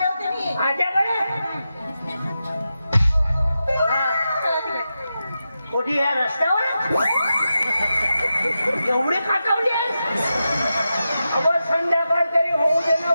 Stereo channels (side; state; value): both; inverted; correlation -0.90